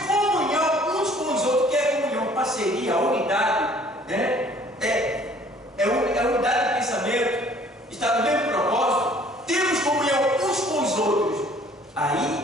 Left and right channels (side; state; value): both; normal; correlation 0.56